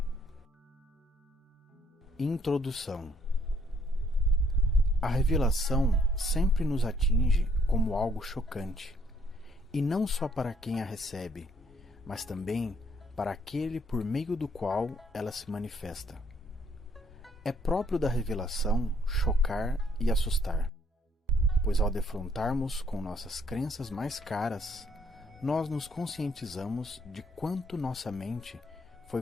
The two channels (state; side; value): normal; both; correlation 0.67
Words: Introdução. A revelação sempre nos atinge como algo chocante, e não só para quem a recebe, mas também para aquele por meio do qual ela se manifesta. É próprio da revelação chocar e assustar, pois ao defrontarmos com nossas crenças mais caras, nós nos conscientizamos de quanto nossa mente foi